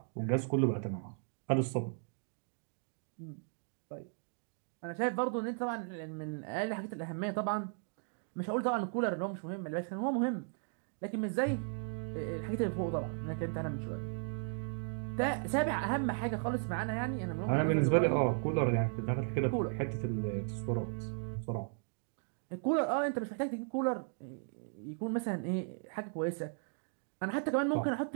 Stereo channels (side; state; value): left; silent; 54 dB below the other